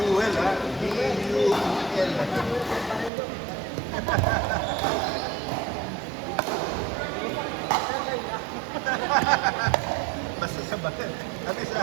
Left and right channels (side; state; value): left; drops out; at 3.1 s